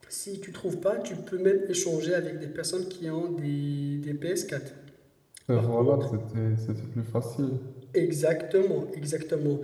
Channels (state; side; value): identical; both; correlation 1.00